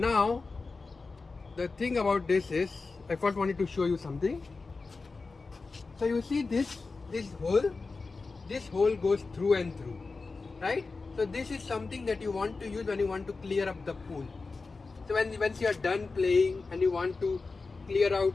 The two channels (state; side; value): quieter; right; 4.0 dB